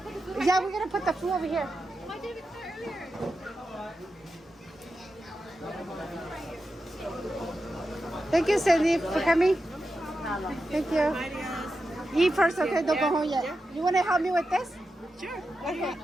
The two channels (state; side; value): normal; both; correlation 0.90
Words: Yeah, we're gonna put the food over here. Why did we start earlier? Thank you, Cindy, for coming. Thank you. Eat first, okay? Don't go home yet. You want to help me with this? Sure. Okay.